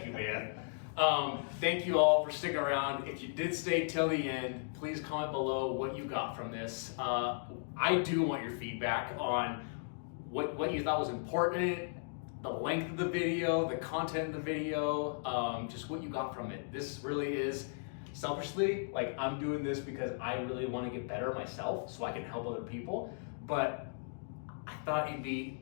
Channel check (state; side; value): silent; right; digital silence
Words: you, man. Thank you all for sticking around. If you did stay till the end, please comment below what you got from this. I do want your feedback on what you thought was important, the length of the video, the content of the video, just what you got from it. This really is, selfishly, like I'm doing this because I really want to get better myself so I can help other people. But I thought it'd